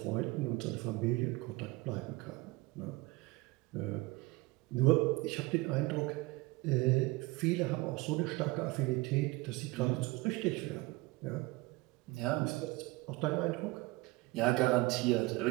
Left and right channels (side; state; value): left; quieter; 22.2 dB